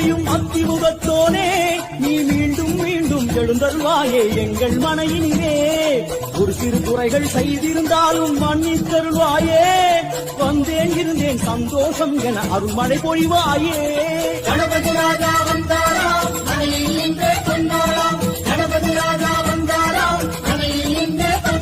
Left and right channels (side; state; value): both; identical; correlation 1.00